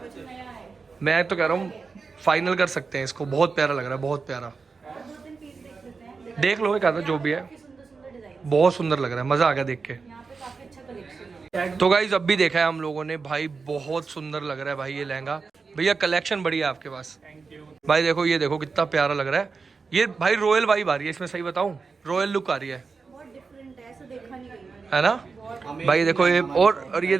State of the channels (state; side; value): quieter; left; 4.8 dB